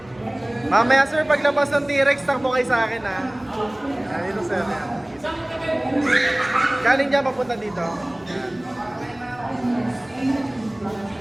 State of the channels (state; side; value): noise; left; rumble, 28 dB below the sound